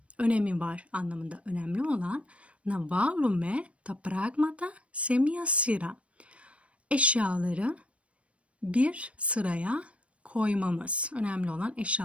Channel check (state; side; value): late; left; 0.062 ms